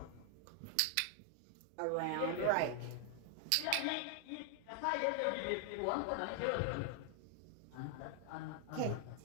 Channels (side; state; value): both; different; correlation 0.00